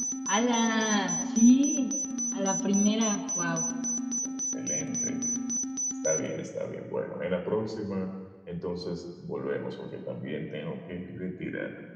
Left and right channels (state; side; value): identical; both; correlation 1.00